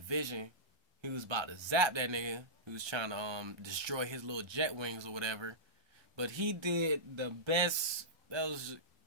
he was about to zap that nigga. He was trying to destroy his little jet wings or whatever. But he did the best.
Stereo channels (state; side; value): late; left; 1.2 ms